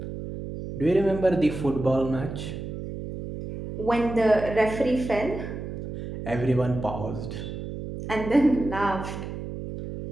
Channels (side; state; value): right; noise; hum, 8 dB below the sound